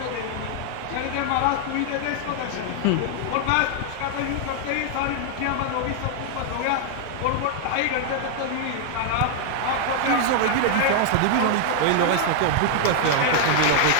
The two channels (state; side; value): different; both; correlation 0.00